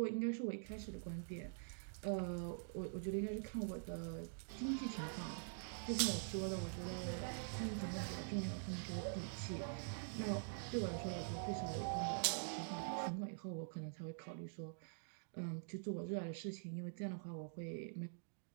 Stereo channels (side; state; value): left; silent; digital silence